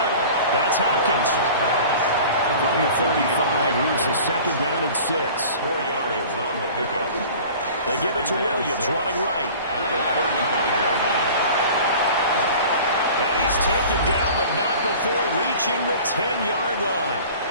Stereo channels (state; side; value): inverted; both; correlation -0.43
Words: That's Hopkins. From the 35, here's the 2nd down and 6. 4 yards on the pickup. They give it to Williams, running right. At the 35-yard line. And he's taken down, but not before reaching the 10-yard line.